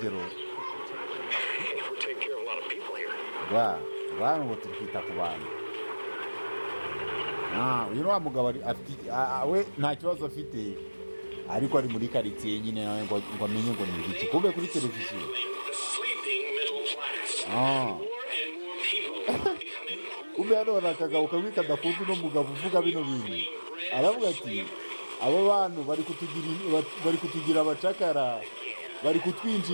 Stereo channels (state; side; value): inverted; both; correlation -1.00